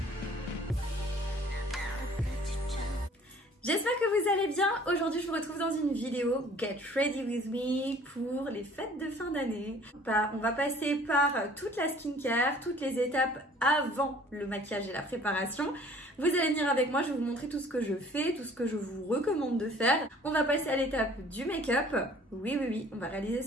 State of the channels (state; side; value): normal; both; correlation 0.53